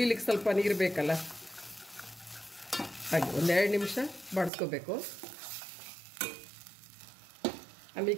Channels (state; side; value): drops out; left; at 4.5 s